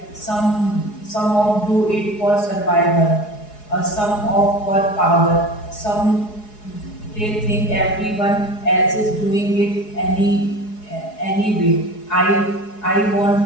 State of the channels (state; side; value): late; right; 4.8 ms